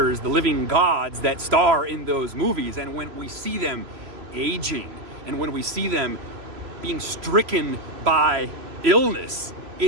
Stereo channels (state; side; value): late; left; 3.0 ms